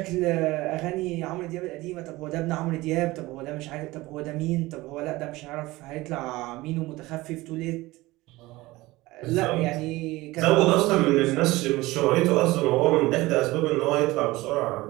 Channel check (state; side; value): quieter; left; 19.7 dB